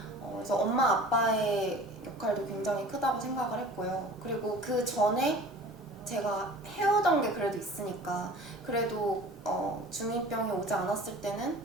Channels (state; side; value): normal; both; correlation 0.43